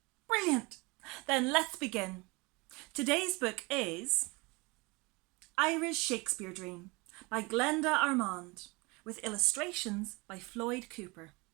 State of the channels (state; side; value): quieter; left; 25.9 dB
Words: Brilliant! Then let's begin. Today's book is Ira's Shakespeare Dream by Glenda Armand with illustrations by Floyd Cooper.